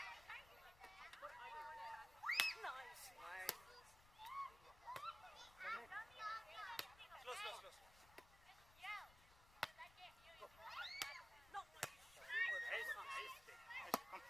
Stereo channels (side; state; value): left; noise; rumble, 20 dB below the sound